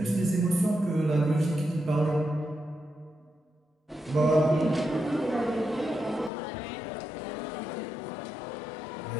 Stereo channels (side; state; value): right; drops out; at 6.3 s